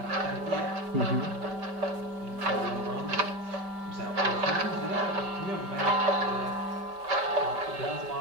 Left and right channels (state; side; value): late; left; 5.1 ms